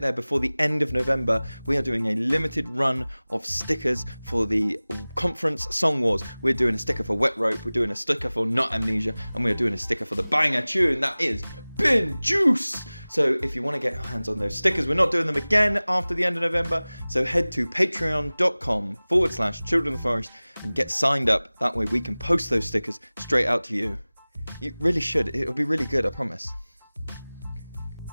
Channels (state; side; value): inverted; both; correlation -0.99